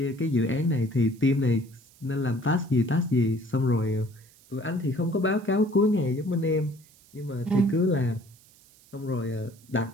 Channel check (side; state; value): right; noise; hiss, 27 dB below the sound